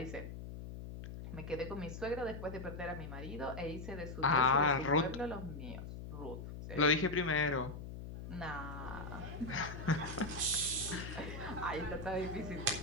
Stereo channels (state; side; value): noise; left; hum, 9 dB below the sound